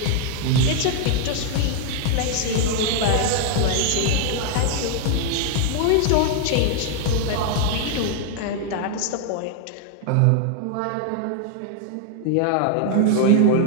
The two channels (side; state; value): both; different; correlation 0.00